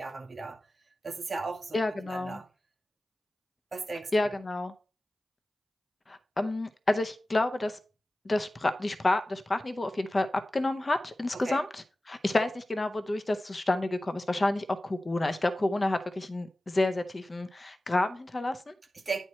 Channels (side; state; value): both; normal; correlation 0.96